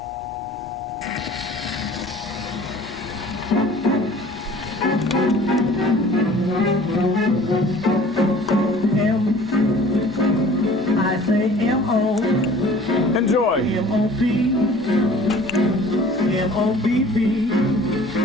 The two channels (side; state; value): both; normal; correlation 0.48